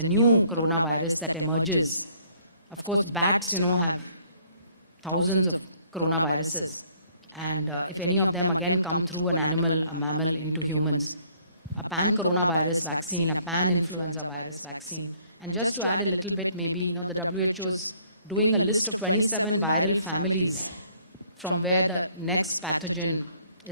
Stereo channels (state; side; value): inverted; both; correlation -0.62